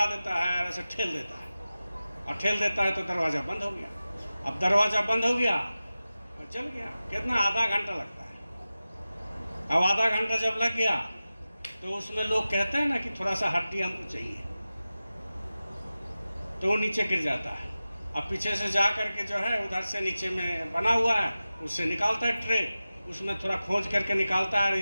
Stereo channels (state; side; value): inverted; both; correlation -0.95